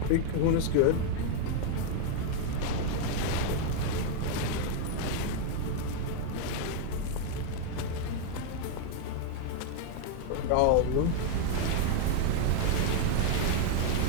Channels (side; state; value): both; different; correlation 0.01